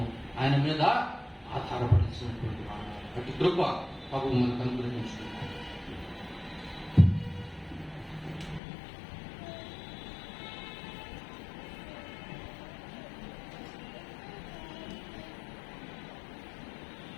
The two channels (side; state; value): right; drops out; at 8.6 s